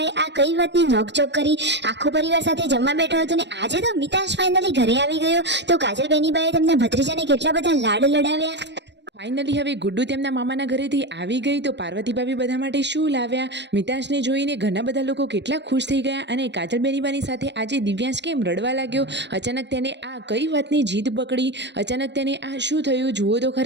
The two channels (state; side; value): late; left; 0.51 ms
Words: આ કઈ વાતની નોકઝોક કરી। આખો પરિવાર સાથે જમવા બેઠો હતો ને આજે તો મિતાશ ફાઇનલી ઘરે આવી ગયો। તો કાજલ બેનીબાએ તેમના ભત્રીજાને કેટલા બધા લાડ લડાવ્યા। ફાઇનલી હવે ગુડ્ડુ તેમના મામાના ઘરેથી આવી ગઈ તો પાર્વતી ભાભી બધા માટે શું લાવ્યા, મિતાશને જોઈને ઘણા બધા લોકો કેટલા ખુશ થઈ ગયા। અને કાજલ બેનીબાની સાથે આજે દિવ્યાંશ કેમ રડવા લાગ્યો, અચાનક તેને આ કઈ વાતની જીદ પકડી, અચાનક તેને આ શું થયું જુઓ તો